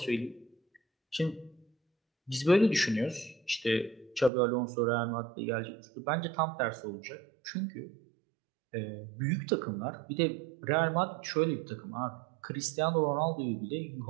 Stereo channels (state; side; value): drops out; left; at 4.3 s